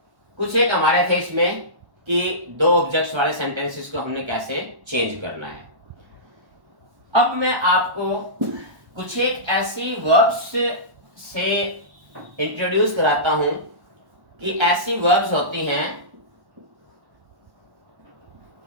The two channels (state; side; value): late; left; 1.1 ms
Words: कुछ एक हमारे थे इसमें कि दो ऑब्जेक्ट्स वाले सेंटेंसेस को हमने कैसे चेंज करना है। अब मैं आपको कुछ एक ऐसी वर्ब्स से इंट्रोड्यूस कराता हूं कि ऐसी वर्ब्स होती हैं